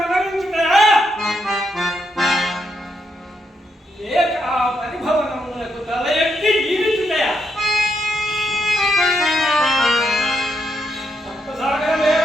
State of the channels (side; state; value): both; normal; correlation 0.79